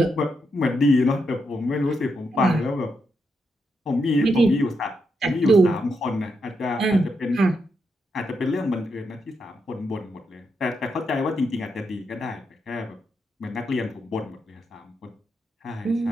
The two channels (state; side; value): normal; both; correlation 0.82